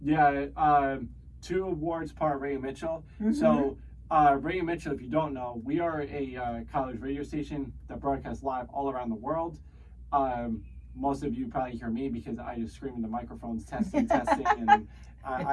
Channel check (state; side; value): identical; both; correlation 1.00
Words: 2 awards part of Radio Mitchell. Mm-hmm. So Radio Mitchell, if you don't know, we are a college radio station that broadcasts live all around the world. Most of you probably hear me because I just scream in the microphones, testing, and